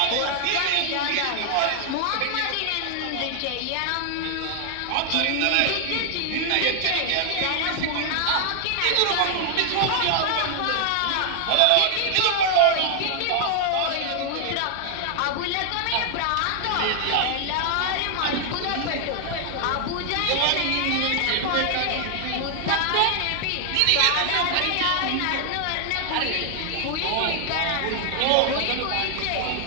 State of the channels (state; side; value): different; both; correlation 0.00